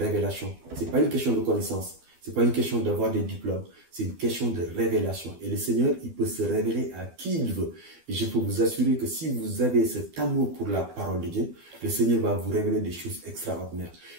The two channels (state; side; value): late; left; 12 ms